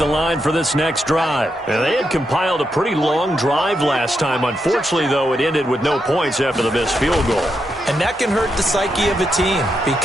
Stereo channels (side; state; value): both; normal; correlation 0.83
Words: line for this next drive. And they had compiled a pretty long drive last time. Unfortunately, though, it ended with no points after the missed field goal. And that can hurt the psyche of a team